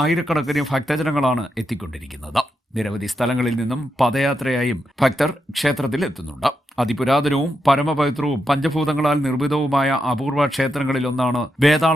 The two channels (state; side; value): normal; both; correlation 0.85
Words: ഭക്തജനങ്ങളാണ് എത്തിക്കൊണ്ടിരിക്കുന്നത്. നിരവധി സ്ഥലങ്ങളിൽ നിന്നും പദയാത്രയായും ഭക്തർ ക്ഷേത്രത്തിൽ എത്തുന്നുണ്ട്. അതിപുരാതനവും പരമപവിത്രവും പഞ്ചഭൂതങ്ങളാൽ നിർമ്മിതവുമായ അപൂർവ ക്ഷേത്രങ്ങളിലൊന്നാണ്